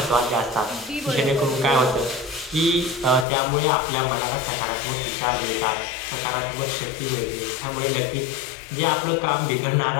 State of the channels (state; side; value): drops out; right; at 3.2 s